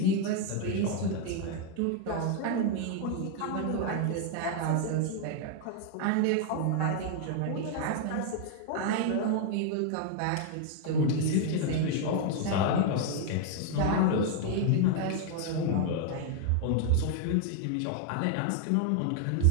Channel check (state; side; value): different; both; correlation 0.00